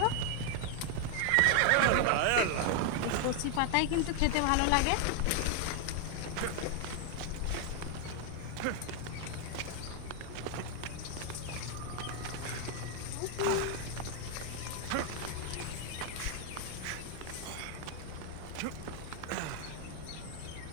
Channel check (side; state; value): both; different; correlation 0.00